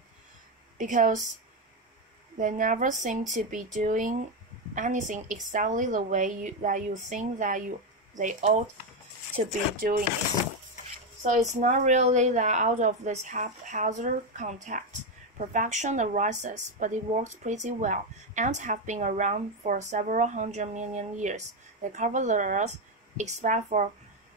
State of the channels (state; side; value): normal; both; correlation 0.08